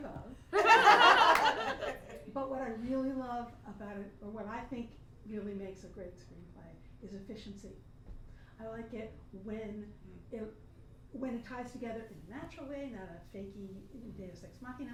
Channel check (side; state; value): both; identical; correlation 1.00